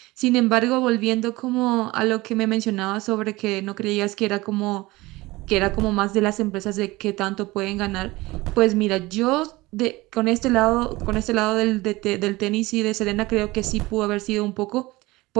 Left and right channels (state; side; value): quieter; left; 20.5 dB